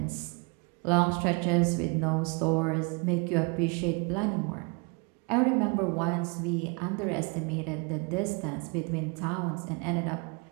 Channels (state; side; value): quieter; left; 31.6 dB